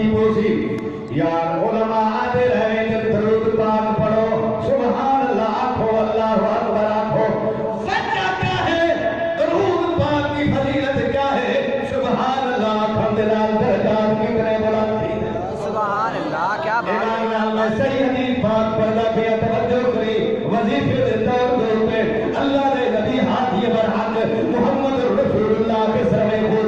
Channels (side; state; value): both; identical; correlation 1.00